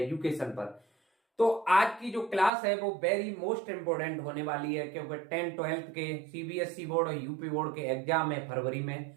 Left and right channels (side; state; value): left; drops out; at 2.5 s